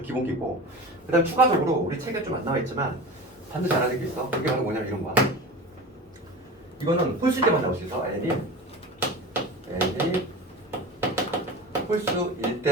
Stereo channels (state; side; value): normal; both; correlation 0.32